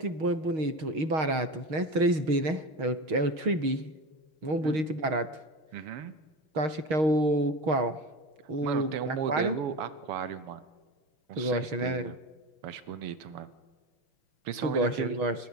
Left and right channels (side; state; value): left; late; 6.4 ms